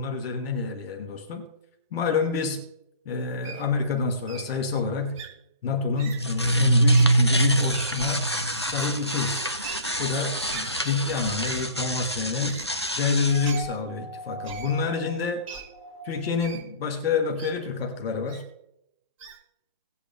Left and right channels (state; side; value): inverted; both; correlation -0.46